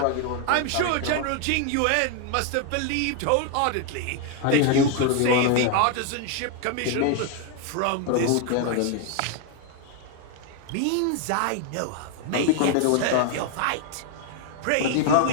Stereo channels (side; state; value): both; different; correlation 0.01